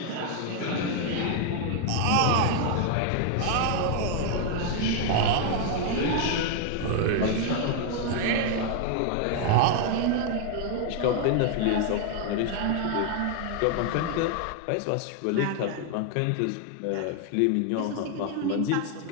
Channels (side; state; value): both; different; correlation 0.00